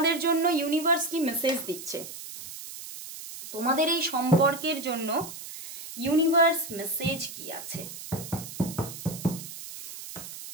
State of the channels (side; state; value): right; noise; hiss, 11 dB below the sound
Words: জন্য ইউনিভার্স কি মেসেজ দিচ্ছে। তোমাদের এই সম্পর্কের জন্য ইউনিভার্স মেসেজ কি আছে?